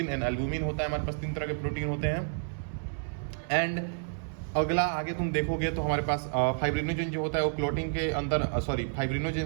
and albumin होता है। हमारे पास 3 तरह के प्रोटीन होते हैं। एंड अगला आगे तुम देखोगे तो हमारे पास फाइब्रिनोजन जो होता है वो क्लोटिंग के अंदर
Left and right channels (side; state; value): left; silent; 58 dB below the other